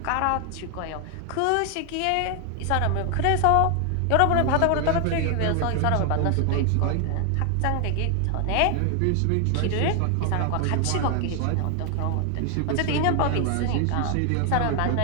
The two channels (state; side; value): different; both; correlation 0.00